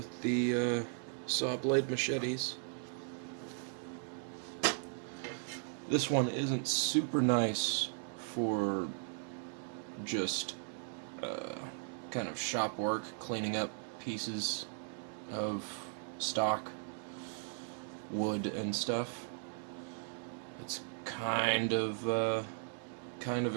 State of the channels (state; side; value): silent; left; 53 dB below the other